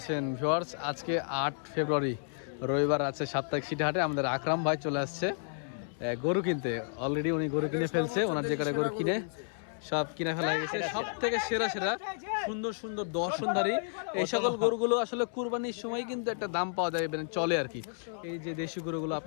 ভিউয়ার্স? আজকে 8 ফেব্রুয়ারি রবিবার আছে সাপ্তাহিক সিটি হাটে। আমাদের আকরাম ভাই চলে আসছে গরু কিনতে। অলরেডি উনি গরু কিনে ফেলছে, ওনার যে কটা গরু কিনে সব কিনে ফেলা হয়ে গেছে। সব থেকে সেরা সুন্দর সুন্দর দর্শনধারী এই সকল গরুগুলো আসলে কুরবানির সময় কিন্তু একটা দাম পাওয়া যায়, মানে চলে আর কি। এই যে দেশি গরুগুলো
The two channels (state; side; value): silent; right; 57 dB below the other